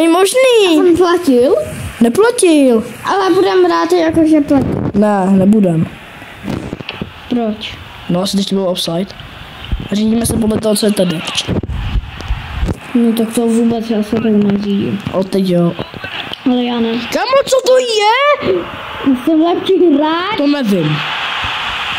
možný. On platil? Neplatil. Ale budem brát jakože platil. Ne, nebudem. Proč? No, asi teď to bylo offside. Řídíme se podle toho, co je tady. No tak to vůbec já se tak neřídím. O, teď jo. Ale já ne. Kámo, co to je? Jsem lepší hráč. To nevím.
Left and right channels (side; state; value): both; identical; correlation 1.00